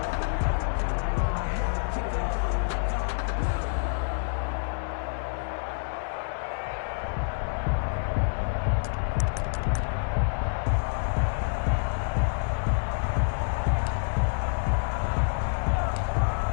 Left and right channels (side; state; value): right; silent; 60 dB below the other